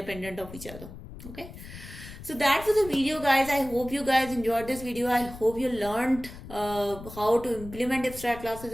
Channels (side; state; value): left; noise; rumble, 14 dB below the sound